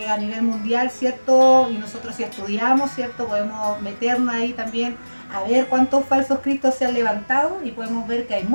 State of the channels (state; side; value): inverted; both; correlation -1.00